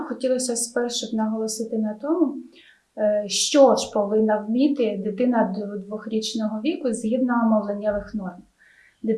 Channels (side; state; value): both; identical; correlation 1.00